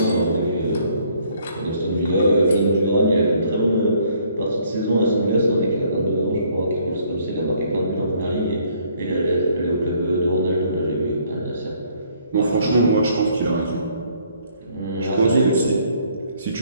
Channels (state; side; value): inverted; both; correlation -0.64